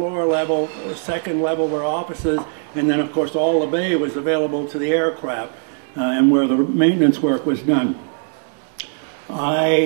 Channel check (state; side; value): silent; left; 63 dB below the other